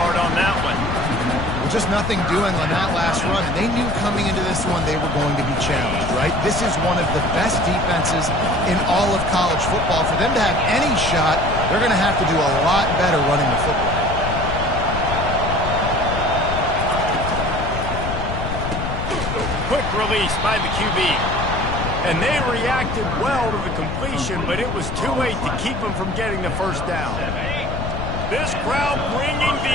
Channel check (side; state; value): left; noise; rumble, 4 dB below the sound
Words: on that one. Well, just nothing doing on that last run, and they knew coming into this one they were going to be challenged, right? This is one of the best defenses in all of college football. For them to have any shot, they're going to have to do a lot better running the football. Quick release by the QB. And they reacted well to the completion, but it was too late to keep them from getting the first down. This crowd bringing